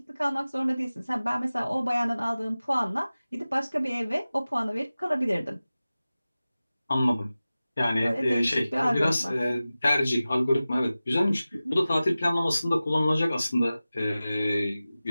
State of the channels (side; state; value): both; inverted; correlation -0.96